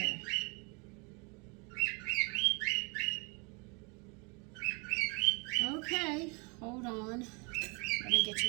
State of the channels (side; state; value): left; quieter; 31.6 dB